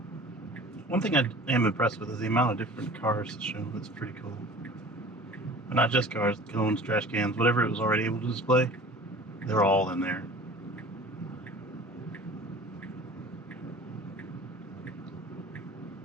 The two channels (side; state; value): both; normal; correlation 0.42